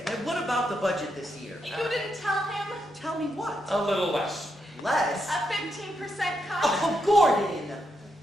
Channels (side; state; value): both; normal; correlation 0.82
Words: And what about the budget this year? You didn't tell him? Tell me what? A little less. Less? A 15% cut? Oh, Gordon!